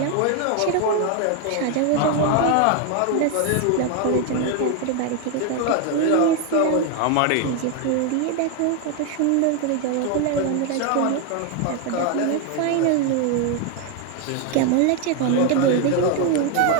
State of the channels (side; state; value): both; different; correlation 0.01